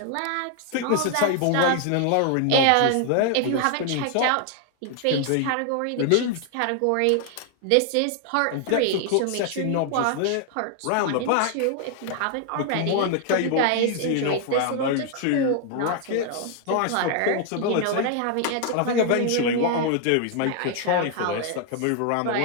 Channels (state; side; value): different; both; correlation 0.00